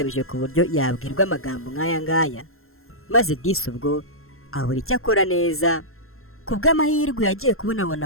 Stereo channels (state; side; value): late; right; 0.61 ms